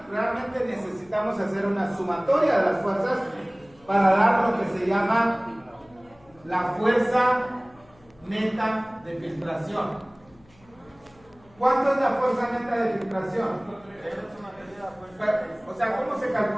realmente necesitamos hacer una sumatoria de las fuerzas para dar lo que se llama la fuerza neta de filtración. ¿Cuánto es la fuerza neta de filtración? O sea, ¿cómo se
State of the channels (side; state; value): left; noise; hum, 29 dB below the sound